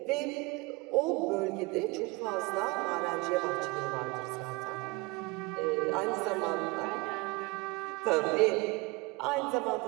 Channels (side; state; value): left; quieter; 25.5 dB